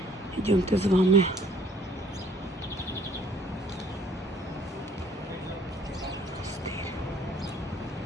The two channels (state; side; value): normal; both; correlation 0.59